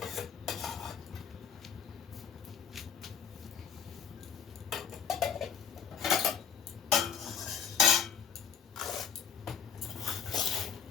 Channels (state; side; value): quieter; right; 7.3 dB